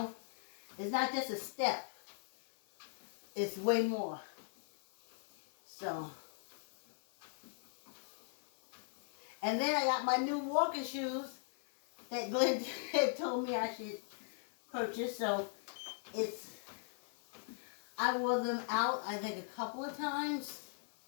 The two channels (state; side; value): silent; right; 52 dB below the other